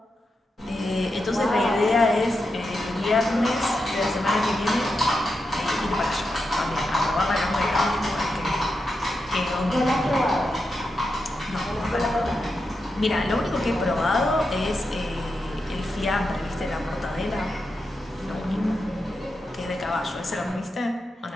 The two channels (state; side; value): normal; both; correlation 0.87